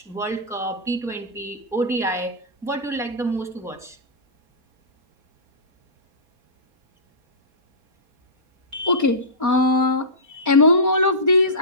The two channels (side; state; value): left; late; 4.3 ms